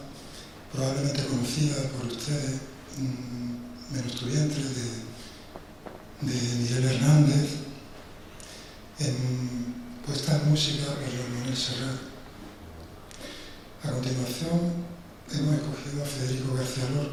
probablemente conocida por ustedes, Menos tu vientre, de Miguel Hernández, puesta en música por Joan Manuel Serrat. A continuación hemos escogido a Federico García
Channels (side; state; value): both; identical; correlation 1.00